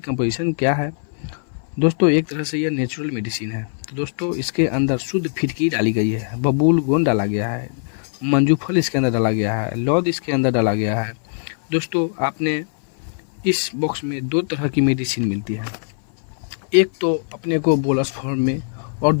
कंपोजिशन क्या है। दोस्तों, एक तरह से यह नेचुरल मेडिसिन है। तो दोस्तों, इसके अंदर शुद्ध फिटकी डाली गई है, बबूल गोंद डाला गया है, मंजूफल इसके अंदर डाला गया है, लौद इसके अंदर डाला गया है। दोस्तों, आपने इस बॉक्स में दो तरह की मेडिसिन मिलती है। एक तो अपने को बोलस फॉर्म में और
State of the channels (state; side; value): silent; right; 60 dB below the other